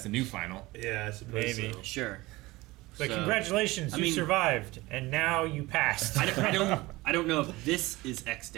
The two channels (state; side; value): quieter; left; 20.4 dB